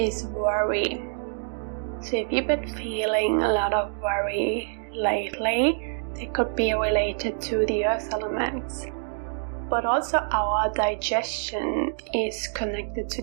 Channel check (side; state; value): left; silent; digital silence